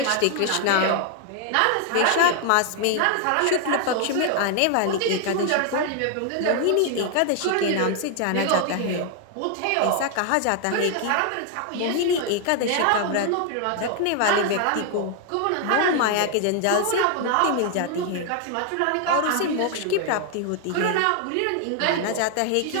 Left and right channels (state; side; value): different; both; correlation 0.00